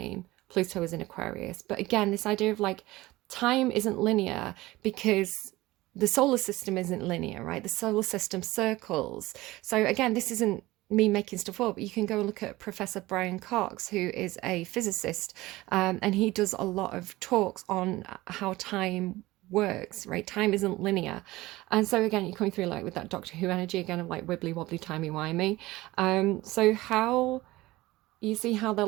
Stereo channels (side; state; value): left; quieter; 18.8 dB